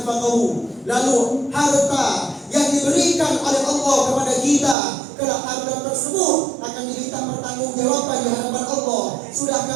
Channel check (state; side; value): drops out; left; at 4.8 s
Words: Lalu harta yang diberikan oleh Allah kepada kita, kelak harta tersebut akan diminta pertanggungjawaban di hadapan Allah.